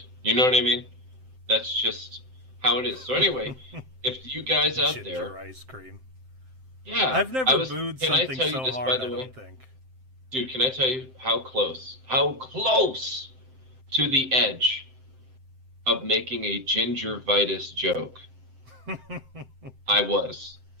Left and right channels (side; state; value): left; late; 7.7 ms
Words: You know what I mean? That's just how it is. So anyway, if you guys out ginger there... ice cream. Yeah. I've never booed something so this, hard, by the way? I don't think. Dude, can I tell you how close to the edge of making a gingivitis joke I was?